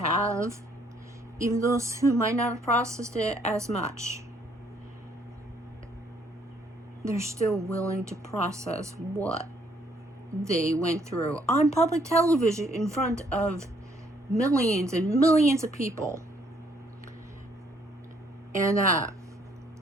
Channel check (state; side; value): normal; both; correlation 0.66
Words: even those who might not have processed it as much. they're still willing to process what they went through on public television in front of millions and millions of people. And